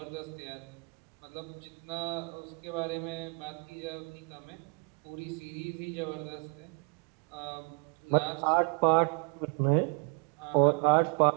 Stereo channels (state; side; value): quieter; left; 34.3 dB